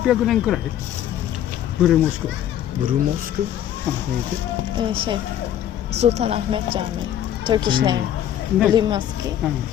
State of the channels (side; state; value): right; quieter; 10.9 dB